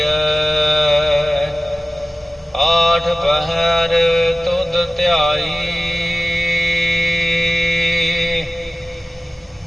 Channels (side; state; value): both; normal; correlation 0.96